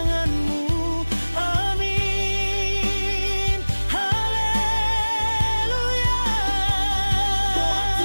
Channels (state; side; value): inverted; both; correlation -1.00